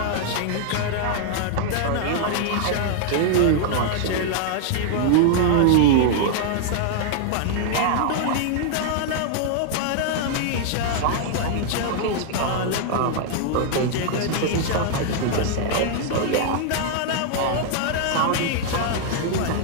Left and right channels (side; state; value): both; different; correlation -0.01